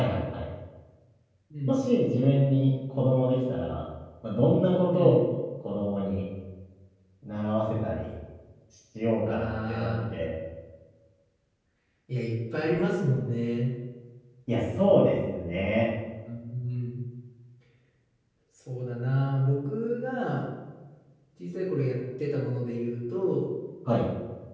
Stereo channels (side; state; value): both; identical; correlation 1.00